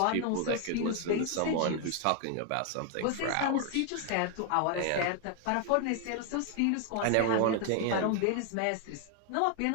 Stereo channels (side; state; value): both; different; correlation 0.01